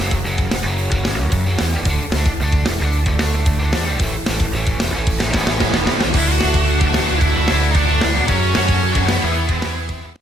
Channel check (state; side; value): normal; both; correlation 0.78